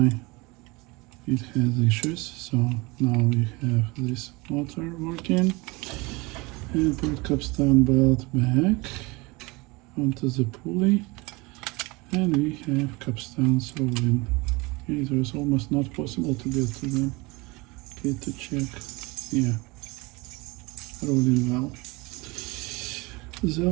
it has issues. So now we have this motor working. And put capstan belt back onto the pulley. And we have capstans rolling. It was almost not possible to get to them. Okay, to check. Yeah, rolling well. The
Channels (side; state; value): left; quieter; 24.9 dB